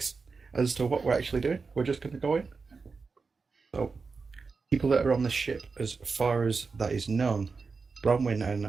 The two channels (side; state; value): left; quieter; 4.6 dB